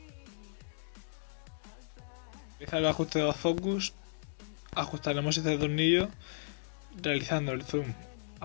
Realizar el ajuste de los focus. Ajustaremos este tornillo realizando el zoom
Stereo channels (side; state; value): right; silent; digital silence